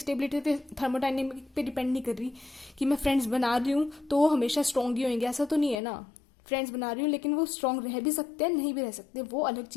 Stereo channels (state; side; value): drops out; right; at 5.8 s